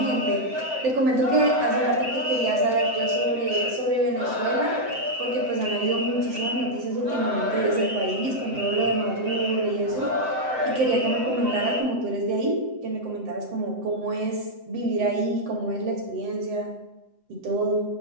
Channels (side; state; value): left; late; 7.8 ms